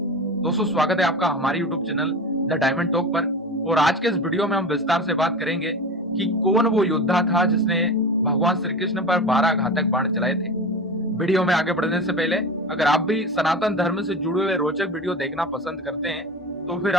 दोस्तों, स्वागत है आपका हमारे YouTube channel the diamond talk पर। और आज के इस वीडियो में हम विस्तार से बात करेंगे कि कौन वो योद्धा था जिसने भगवान श्री कृष्ण पर 12 घातक बाण चलाए थे। वीडियो में आगे बढ़ने से पहले अगर आप भी सनातन धर्म से जुड़े हुए रोचक वीडियो देखना पसंद करते हैं तो फिर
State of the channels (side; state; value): both; normal; correlation 0.29